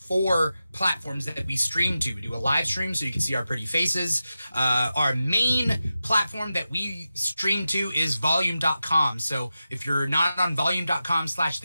platforms that we stream to. We do a live stream so you can see our pretty faces. Our main platform that we stream to is volume.com. So if you're not on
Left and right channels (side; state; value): both; inverted; correlation -0.92